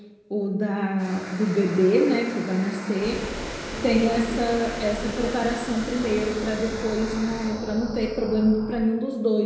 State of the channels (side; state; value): both; identical; correlation 1.00